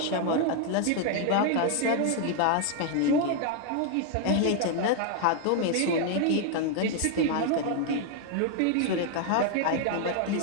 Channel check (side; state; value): both; different; correlation 0.00